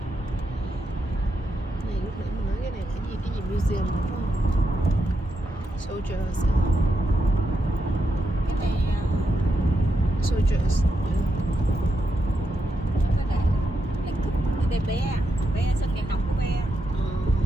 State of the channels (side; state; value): both; normal; correlation 0.83